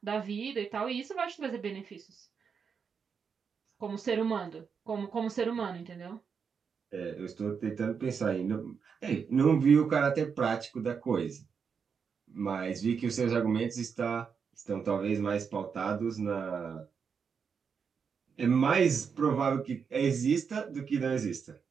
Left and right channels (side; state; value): left; quieter; 6.3 dB